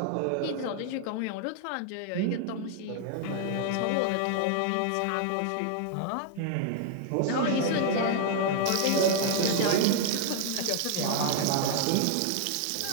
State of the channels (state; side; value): different; both; correlation 0.00